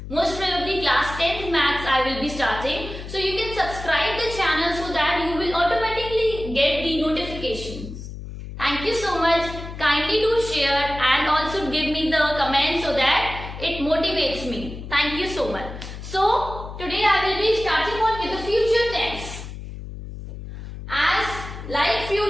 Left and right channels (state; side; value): noise; left; hum, 10 dB below the sound